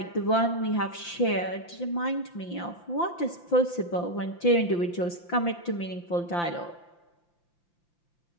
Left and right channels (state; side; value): late; right; 5.8 ms